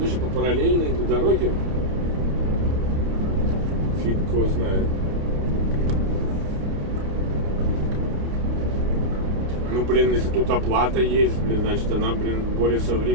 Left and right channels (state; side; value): late; left; 30 ms